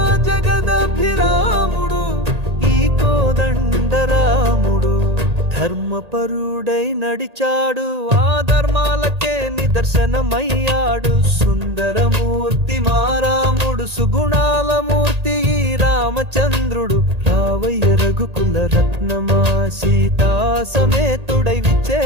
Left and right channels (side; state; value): left; late; 1.8 ms